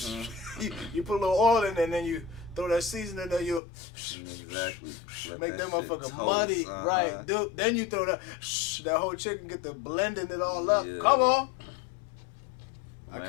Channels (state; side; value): drops out; right; at 3.6 s